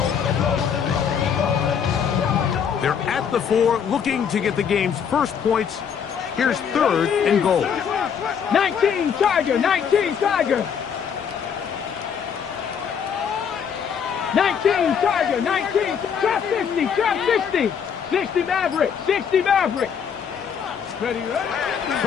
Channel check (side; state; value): right; quieter; 7.4 dB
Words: They're at the 4, looking to get the game's first points Here's 3rd and goal. 19 Tiger, 19 Tiger. 19 Tiger, 19. Trap 50, trap 60. 60 Maverick, 60 Maverick.